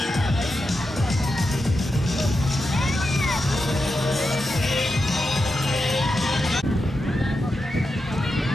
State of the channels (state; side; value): normal; both; correlation 0.88